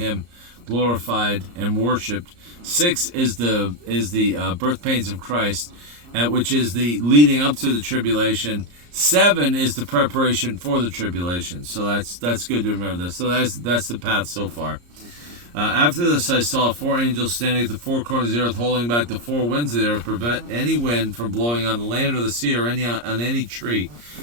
glorified and worshipped. 6 is the birth pains of Christ, which is the leading up to the tribulation. 7 is the preparation for the tribulation. So that's good to remember this. So that's the path so far. After this, I saw 4 angels standing at the 4 corners of the earth, holding back the 4 winds of the earth, to prevent any wind from blowing on the land or the sea or on any tree.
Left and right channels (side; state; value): left; late; 34 ms